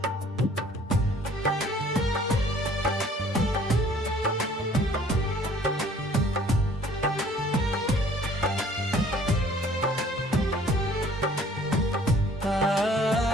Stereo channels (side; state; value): both; normal; correlation 0.55